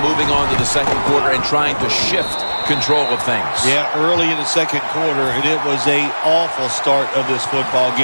on to the second quarter and trying to shift control of things? Yeah, early in the second quarter, and it was an awful start of this football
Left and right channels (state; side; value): inverted; both; correlation -1.00